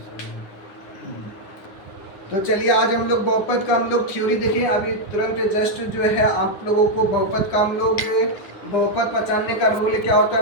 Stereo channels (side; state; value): right; late; 9.7 ms